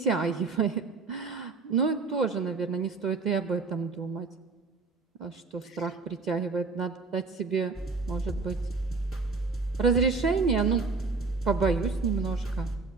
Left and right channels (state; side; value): quieter; left; 4.1 dB